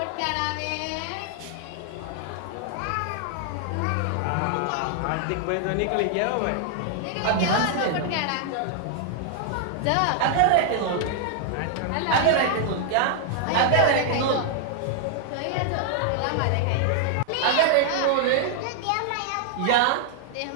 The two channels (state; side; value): different; both; correlation 0.00